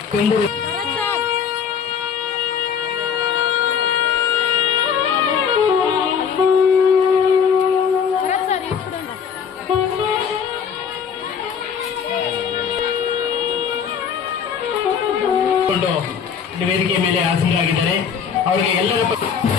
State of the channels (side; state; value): right; quieter; 7.1 dB